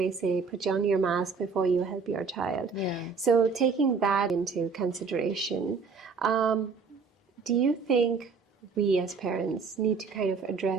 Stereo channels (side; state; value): left; quieter; 4.9 dB